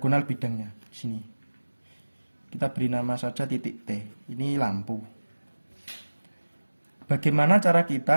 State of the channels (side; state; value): both; inverted; correlation -1.00